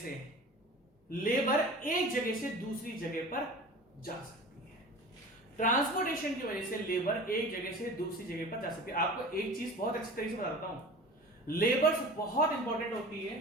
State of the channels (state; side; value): normal; both; correlation 0.38